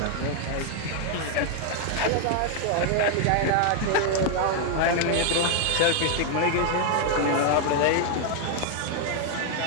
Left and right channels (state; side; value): different; both; correlation 0.00